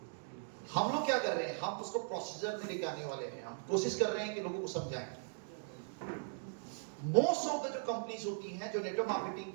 हम लोग क्या कर रहे हैं, हम उसको प्रोसीजर में लेके आने वाले हैं। हम कोशिश कर रहे हैं कि लोगों को समझाएं। मोस्ट ऑफ द जो कंपनीज होती हैं, जो नेटवर्क मार्केटिंग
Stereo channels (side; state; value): left; silent; digital silence